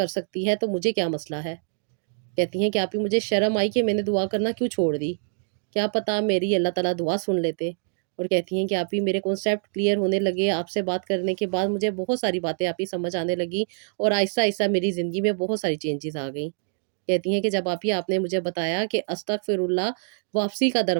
سکتی ہے تو مجھے کیا مسئلہ ہے۔ کہتی ہیں کہ آپ ہی مجھے شرم آئی کہ میں نے دعا کرنا کیوں چھوڑ دی، کیا پتا میری اللہ تعالیٰ دعا سن لیتے۔ اور کہتی ہیں کہ آپ ہی میرے کانسیپٹ کلیئر ہونے لگے، آپ سے بات کرنے کے بعد مجھے بہت ساری باتیں آپ ہی سمجھ آنے لگی، اور آہستہ آہستہ میری زندگی میں بہت ساری چینجز آ گئیں۔ کہتی ہیں کہ جب آپ نے مجھے بتایا کہ استغفر اللہ واپسی کا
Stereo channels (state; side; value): silent; left; digital silence